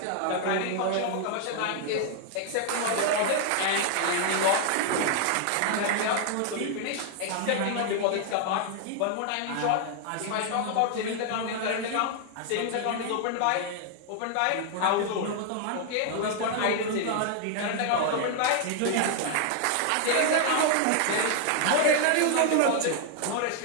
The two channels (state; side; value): different; both; correlation 0.00